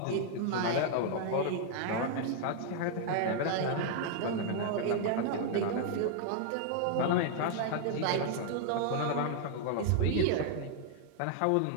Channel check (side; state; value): both; different; correlation -0.01